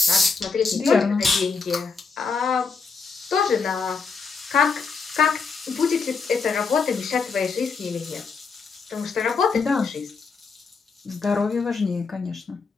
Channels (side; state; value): right; quieter; 4.9 dB